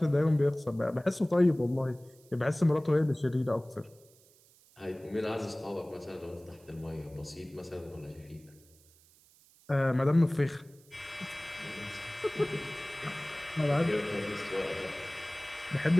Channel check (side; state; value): right; noise; hiss, 28 dB below the sound